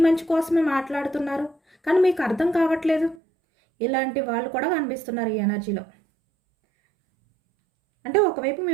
మంచి కోసమే మాట్లాడుతున్నారు, కానీ మీకు అర్థం కావట్లేదు. ఇలాంటి వాళ్ళు కూడా కనిపిస్తున్నారు ఈ ఎనర్జీలో. అంటే ఒకవైపు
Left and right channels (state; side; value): drops out; left; at 3.2 s